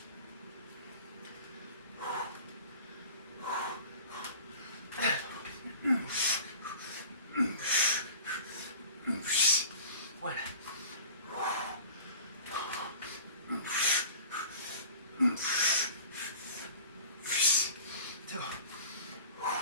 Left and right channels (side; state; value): both; inverted; correlation -0.42